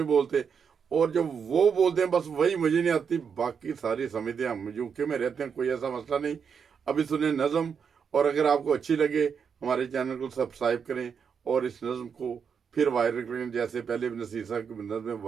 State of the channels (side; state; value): left; quieter; 6.6 dB